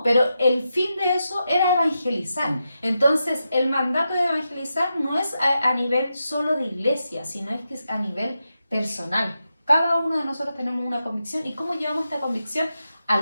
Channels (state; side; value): inverted; both; correlation -0.88